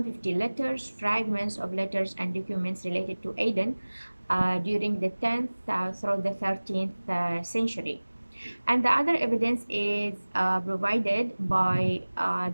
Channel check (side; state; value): both; inverted; correlation -1.00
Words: letters, fragments of letters and documents related to Aden during the 10th through the 13th century. And the other evidence is provided by